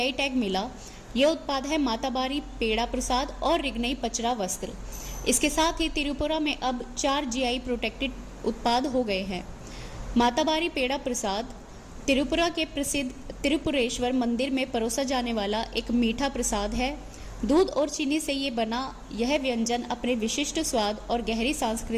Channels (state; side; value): identical; both; correlation 1.00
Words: टैग मिला। यह उत्पाद है माताबारी पेड़ा प्रसाद और रिग्नई पचरा वस्त्र। इसके साथ ही त्रिपुरा में अब 4 जीआई प्रोटेक्टेड उत्पाद हो गए हैं। माताबारी पेड़ा प्रसाद त्रिपुरा के प्रसिद्ध त्रिपुरेश्वर मंदिर में परोसा जाने वाला एक मीठा प्रसाद है। दूध और चीनी से ये बना यह व्यंजन अपने विशिष्ट स्वाद और गहरी